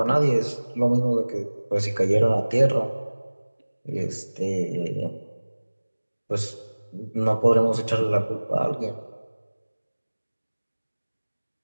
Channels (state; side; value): inverted; both; correlation -1.00